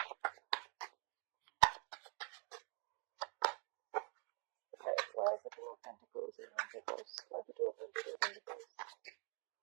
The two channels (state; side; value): quieter; left; 38.0 dB